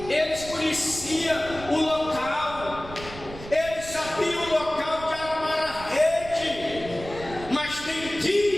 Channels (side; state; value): right; noise; rumble, 14 dB below the sound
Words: Eles conheciam o local. Eles sabiam o local de armar a rede. Mas tem